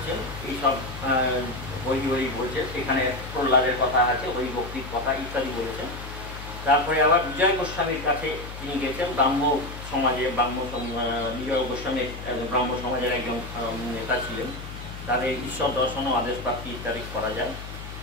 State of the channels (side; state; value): left; noise; hum, 11 dB below the sound